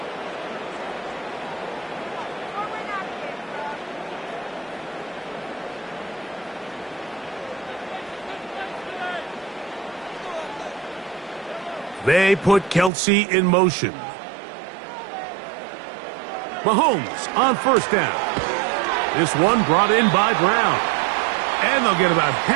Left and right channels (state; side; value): drops out; left; at 12.9 s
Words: They put Kelsey in motion. Mahomes on 1st down. This one brought in by Brown. And they'll get about